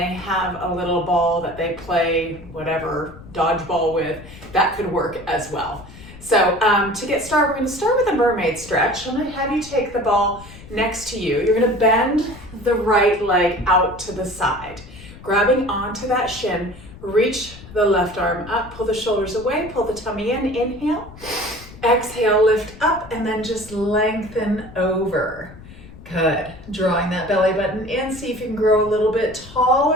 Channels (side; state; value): left; noise; rumble, 18 dB below the sound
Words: have a little ball that they play whatever dodgeball with, that could work as well. So to get started, we're going to start with a mermaid stretch. I'm going to have you take the ball next to you. You're going to bend the right leg out to the side, grabbing onto that shin. Reach the left arm up, pull the shoulders away, pull the tummy in, inhale, exhale, lift up, and then just lengthen over. Good. Drawing that belly button in, see if you can grow a little bit